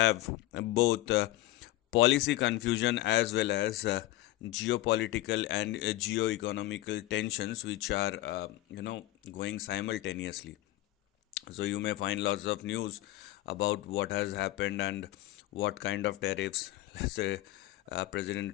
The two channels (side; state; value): right; quieter; 16.5 dB